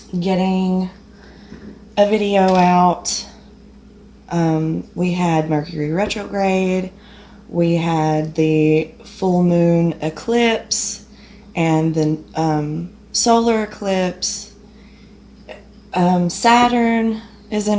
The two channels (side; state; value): both; identical; correlation 1.00